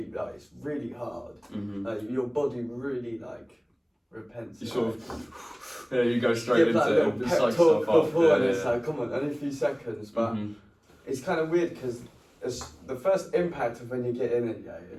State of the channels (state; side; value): identical; both; correlation 1.00